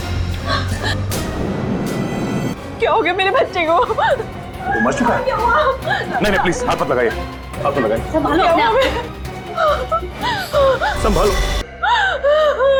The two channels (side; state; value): both; identical; correlation 1.00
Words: क्या हो गया मेरे बच्चे को? वो मर चुका है? नहीं प्लीज हाथ मत लगाइए, हाथ मत लगाइए। संभालो अपने आप। संभालो।